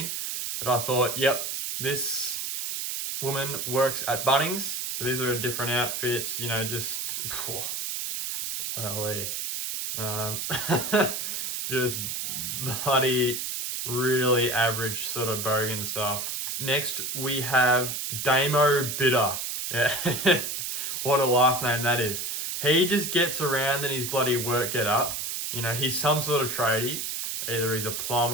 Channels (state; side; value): noise; right; hiss, 3 dB below the sound